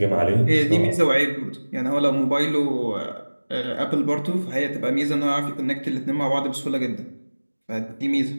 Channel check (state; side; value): inverted; both; correlation -1.00